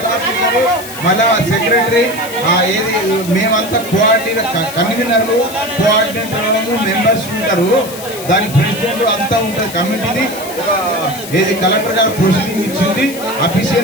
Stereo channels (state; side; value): noise; left; hiss, 12 dB below the sound